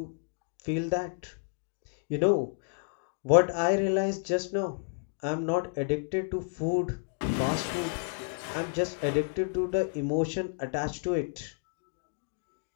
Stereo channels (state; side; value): silent; right; digital silence